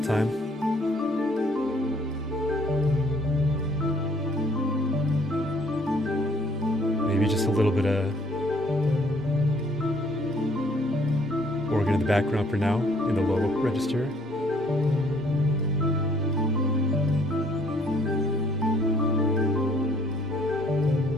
time. Maybe just a little bit of organ in the background for now, in the low register.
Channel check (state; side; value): normal; both; correlation 0.62